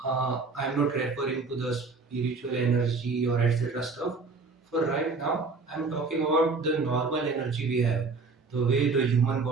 I'm not referring to the spiritual energy or etc. stuff. For right now, I'm talking about the normal energy we have, the way the human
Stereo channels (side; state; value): left; quieter; 4.2 dB